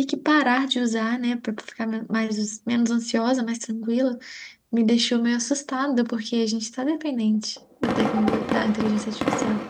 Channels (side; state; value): both; identical; correlation 1.00